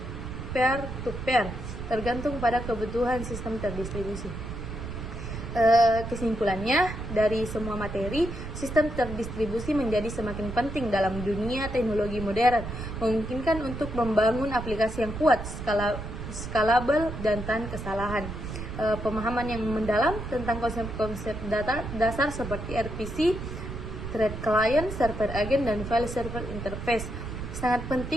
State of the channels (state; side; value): noise; right; rumble, 7 dB below the sound